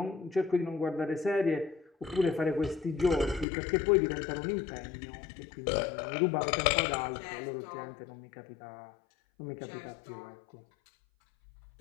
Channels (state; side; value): drops out; right; at 3.5 s